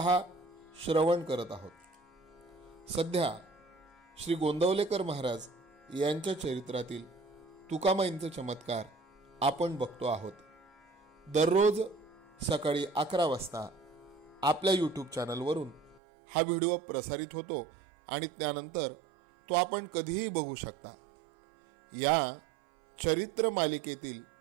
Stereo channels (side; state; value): left; drops out; at 16.0 s